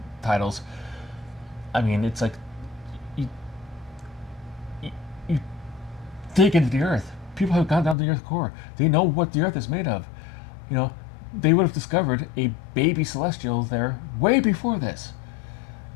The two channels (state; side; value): drops out; right; at 8.0 s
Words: titles. I mean, it's like you dig into the Earth. People have gone down to the Earth core. They know what the Earth is made of. You know, they would have discovered a baby Celestial there way before this.